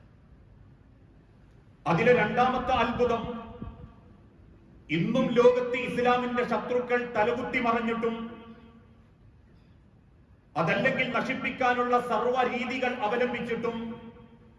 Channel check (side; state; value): both; identical; correlation 1.00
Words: അതിലെ രണ്ടാമത്തെ അത്ഭുതം, ഇന്നും ലോകത്ത് ഇസ്ലാമിന്റെ ശത്രുക്കൾ തലകുത്തി മറിഞ്ഞിട്ടും അതല്ലെങ്കിൽ നശിപ്പിക്കാനുള്ള സർവ്വ രീതികൾ അവലംബിച്ചിട്ടും